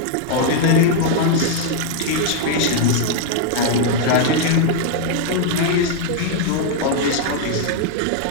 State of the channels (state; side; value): different; both; correlation 0.00